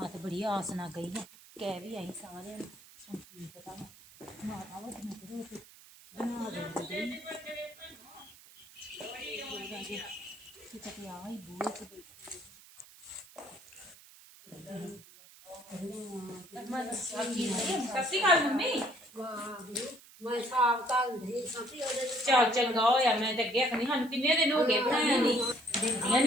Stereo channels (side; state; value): right; noise; hiss, 22 dB below the sound